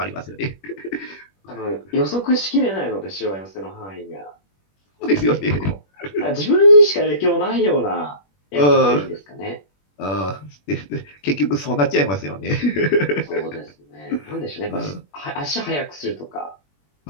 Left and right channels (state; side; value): late; right; 21 ms